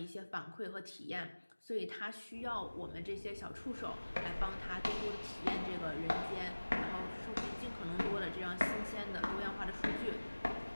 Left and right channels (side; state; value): both; inverted; correlation -1.00